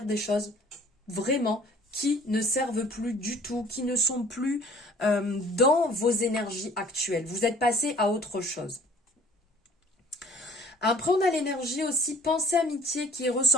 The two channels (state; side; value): normal; both; correlation 0.53